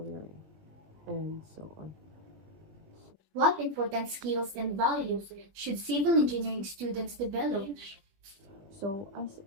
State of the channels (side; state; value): left; late; 21 ms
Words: and so on. What important skills and values should civil engineering students develop? So, as